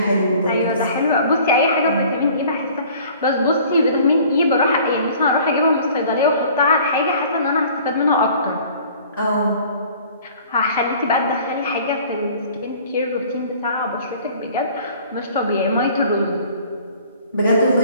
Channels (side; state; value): both; inverted; correlation -0.50